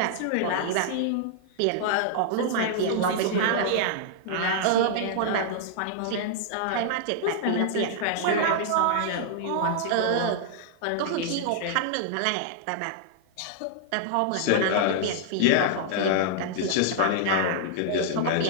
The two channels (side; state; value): both; different; correlation -0.01